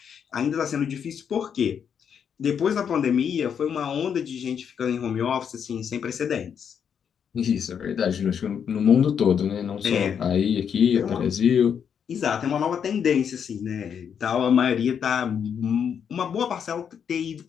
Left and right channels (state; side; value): quieter; right; 7.7 dB